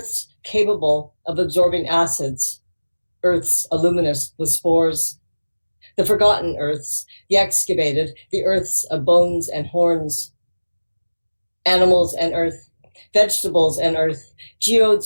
capable of absorbing acids, earths aluminous with spores. The forgotten earths, the excavated, the earths of bones and horns. Animals and earth, vegetables and earth,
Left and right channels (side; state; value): both; inverted; correlation -1.00